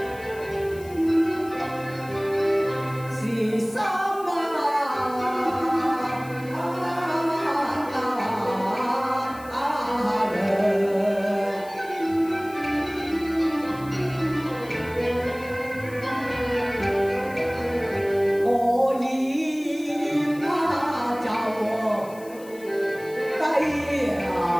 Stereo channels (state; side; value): noise; left; hiss, 22 dB below the sound